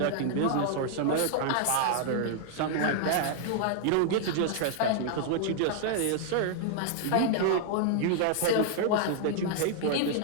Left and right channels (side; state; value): both; different; correlation -0.01